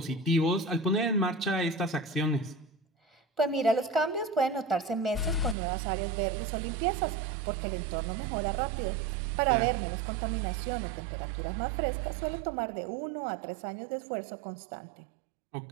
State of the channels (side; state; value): left; drops out; at 5.6 s